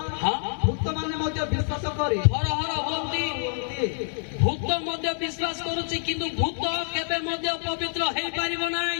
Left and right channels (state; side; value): silent; right; 60 dB below the other